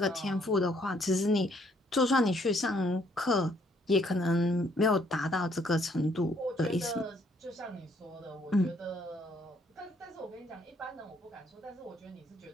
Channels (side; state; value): both; normal; correlation 0.67